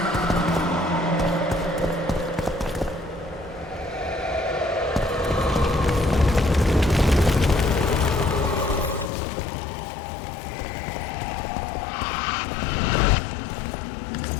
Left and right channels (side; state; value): right; drops out; at 9.1 s